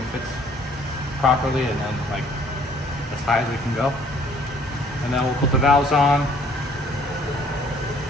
fits properly, and then like as high as we can go. And then we'll put the valves on.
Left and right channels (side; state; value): both; normal; correlation 0.59